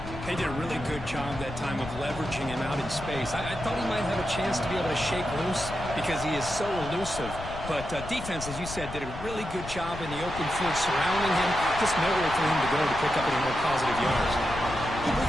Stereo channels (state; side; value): noise; left; rumble, 10 dB below the sound